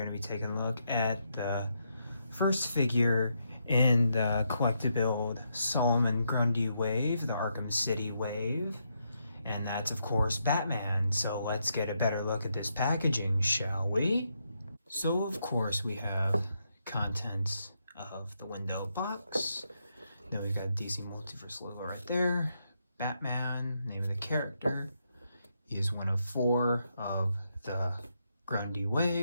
to be taking a look at the first figure in the collectible Solomon Grundy wave, the Arkham City wave, and that's of course Batman. So let's get a better look at this packaging, shall we? So of course we have contents of the window box. Then we've got DC Multiverse logo right there, Batman, name of the character. He is one of 4 of the Grundy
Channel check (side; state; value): both; inverted; correlation -0.80